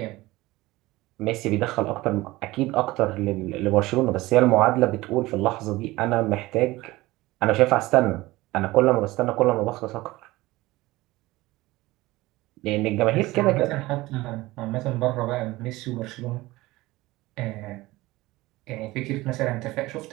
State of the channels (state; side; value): quieter; left; 19.3 dB